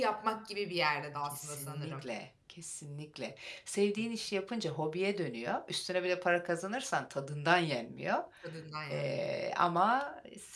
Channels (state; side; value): identical; both; correlation 1.00